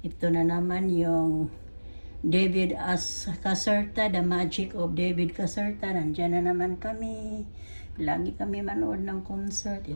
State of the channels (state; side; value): inverted; both; correlation -1.00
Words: Ito na naman yung David Caserta, The Magic of David Caserta. Nandyan na naman kami. Lagi kami manood ng concert.